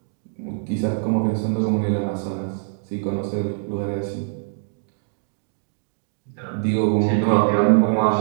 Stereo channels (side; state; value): left; silent; 63 dB below the other